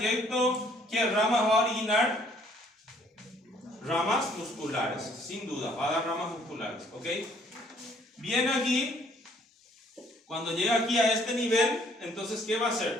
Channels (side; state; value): both; normal; correlation 0.62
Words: ¿qué ramas va a originar? Ramas musculares, sin duda, va a dar ramas musculares, ¿ok? Viene aquí, cuando llega aquí a este nivel, entonces ¿qué va a